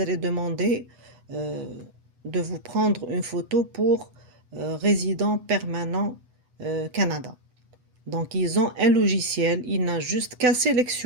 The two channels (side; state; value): left; late; 8.0 ms